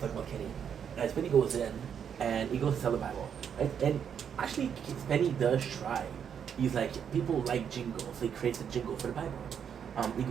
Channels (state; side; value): quieter; left; 8.0 dB